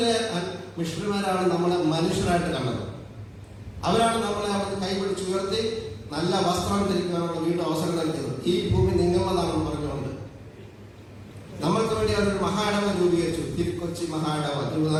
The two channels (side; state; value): both; identical; correlation 1.00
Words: മിഷണറിമാരാണ് നമ്മളെ മനുഷ്യരായിട്ട് കണ്ടത്. അവരാണ് നമ്മളെ അവർക്ക് കൈപിടിച്ചുയർത്തി നല്ല വസ്ത്രം ധരിക്കാനുള്ള വീണ്ടും അവസരം നൽകിയത്. ഈ ഭൂമി നിങ്ങളുടേതാണെന്ന് പറഞ്ഞുകൊണ്ട് നമ്മൾക്ക് വേണ്ടി അവരൊരു മഹായിടവ രൂപീകരിച്ചു. തിരുക്കൊച്ചി മഹായിടവ,